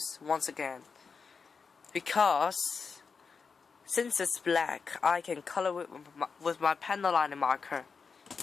once again, because since it's black, I can color it with my pencil liner marker,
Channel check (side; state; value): right; quieter; 5.3 dB